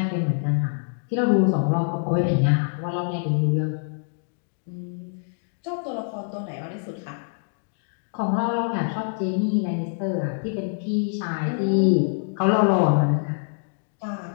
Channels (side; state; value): right; silent; digital silence